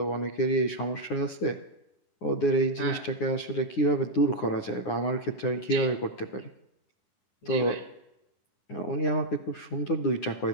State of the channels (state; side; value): late; right; 9.7 ms